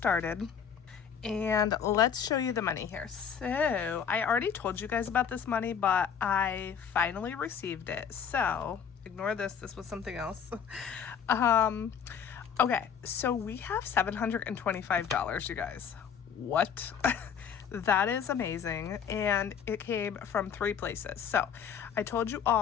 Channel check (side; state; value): right; quieter; 7.5 dB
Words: And let's show you the money here. So I already told you guys about this money, but I finally received it. So ignore this. This was something else. Okay, so we have $725, you guys. What? That is amazing. And it came from 3 places. So I told you